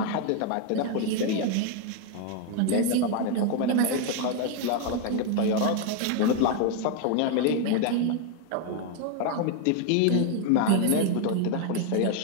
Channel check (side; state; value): both; different; correlation 0.01